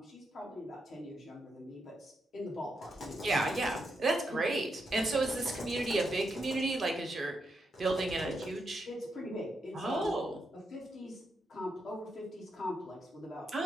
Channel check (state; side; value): normal; both; correlation 0.83